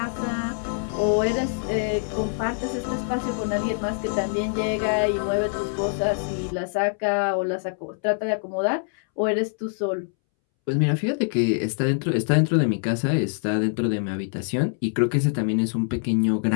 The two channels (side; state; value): right; silent; 62 dB below the other